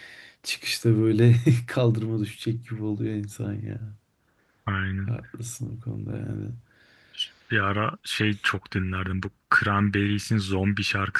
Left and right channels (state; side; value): identical; both; correlation 1.00